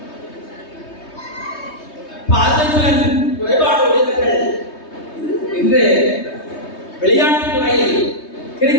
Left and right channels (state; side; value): late; right; 3.2 ms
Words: பார்வைத்திறன் குறைபாடு உடையவர்கள் இன்று விளையாட்டுத் துறையில்